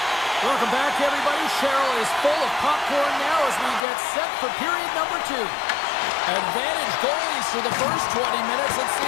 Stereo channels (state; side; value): drops out; right; at 3.9 s